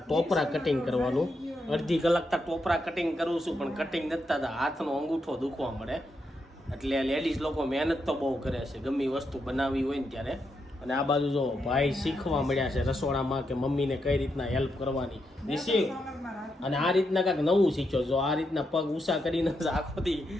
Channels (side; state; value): both; normal; correlation 0.82